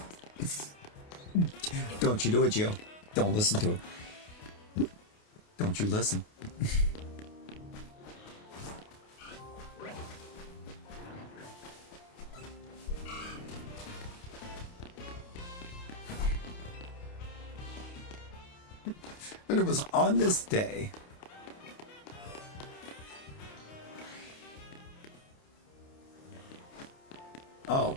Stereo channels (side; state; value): right; late; 28 ms